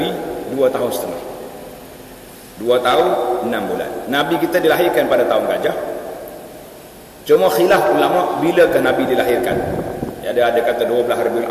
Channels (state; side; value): identical; both; correlation 1.00